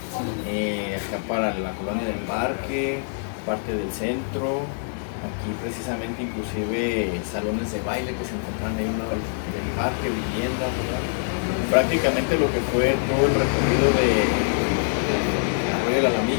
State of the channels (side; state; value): right; silent; digital silence